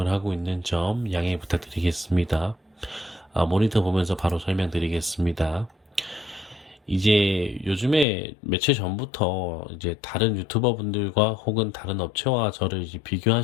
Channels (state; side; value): drops out; right; at 8.1 s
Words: 하고 있는 점 양해 부탁드리겠습니다. 모니터 보면서 바로 설명드리겠습니다. 이제 요즘에 며칠 전부터 이제 다른 유튜버 분들과 혹은 다른 업체와 저를 이제